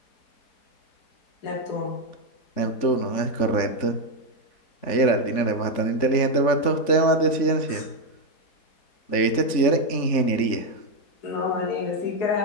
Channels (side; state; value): right; late; 3.5 ms